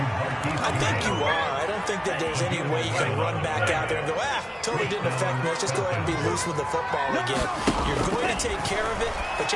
I think you are. I don't think that there's any way you can run back out there and go, totally didn't affect me. Let's just go ahead and be loose with the football again. You're going to take care of it, but you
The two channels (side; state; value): both; identical; correlation 1.00